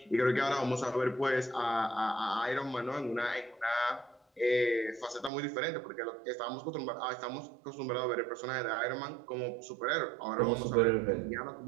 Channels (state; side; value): drops out; left; at 5.3 s